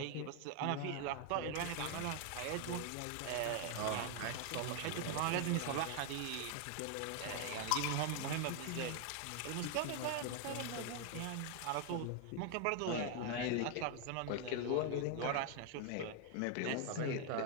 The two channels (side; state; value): both; different; correlation 0.00